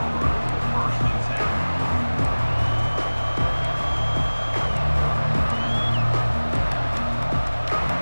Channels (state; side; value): inverted; both; correlation -1.00